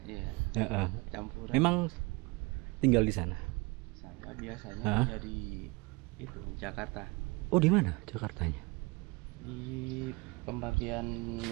Iya. Campuran. Memang tinggal di sana. Saya biasanya dari itu Jakarta. Oh, di mana Jakartanya? Di pembagian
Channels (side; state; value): left; quieter; 26.0 dB